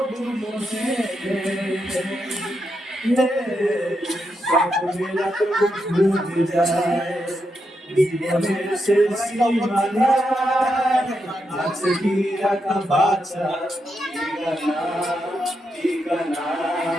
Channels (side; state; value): both; normal; correlation 0.83